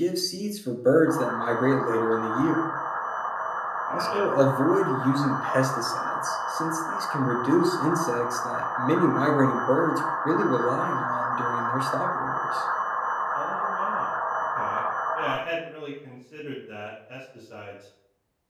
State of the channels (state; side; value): identical; both; correlation 1.00